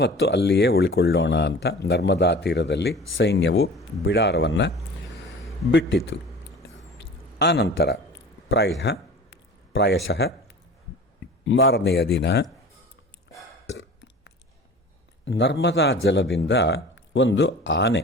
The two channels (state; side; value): normal; both; correlation 0.41